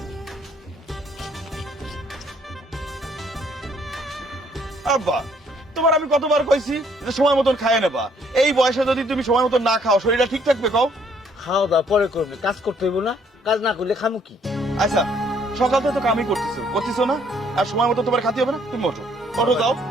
আব্বা, তোমার আমি কতবার কইছি যে সময় মতন খায় নেবা। এই বয়সে যদি তুমি সময় মতন না খাও শরীরটা ঠিক থাকবে কও? খাওয়া দাওয়া পরে করবে, কাজ করতে হইব না? কাজ না করলে খামু কি? আচ্ছা, সকাল থেকে তো কামই করতেছো না? আর সময় মতো তোমার খাতে হবে না? তুমি ওঠো, ওঠো যাও,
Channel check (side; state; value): both; normal; correlation 0.65